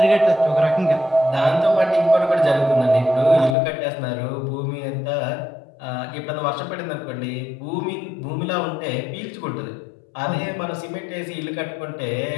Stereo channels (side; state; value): right; drops out; at 3.6 s